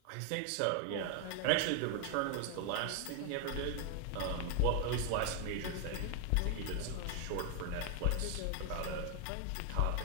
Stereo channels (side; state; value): both; different; correlation 0.01